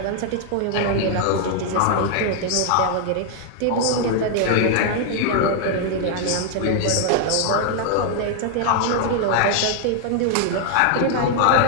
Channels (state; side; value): different; both; correlation 0.00